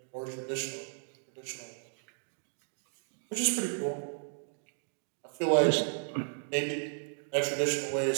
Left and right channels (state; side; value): silent; left; digital silence